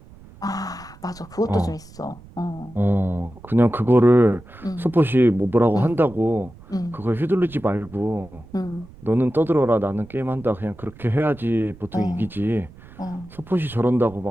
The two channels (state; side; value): noise; right; rumble, 21 dB below the sound